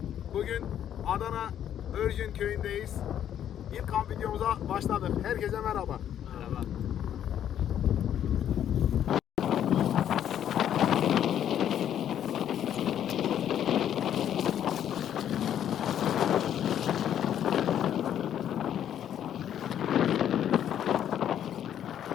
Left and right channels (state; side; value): quieter; right; 10.1 dB